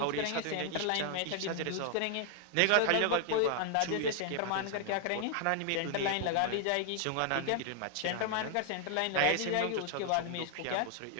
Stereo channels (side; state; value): both; different; correlation 0.00